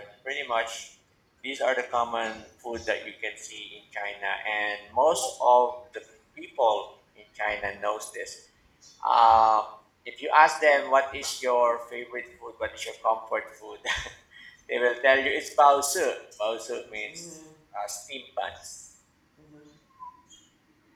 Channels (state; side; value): identical; both; correlation 1.00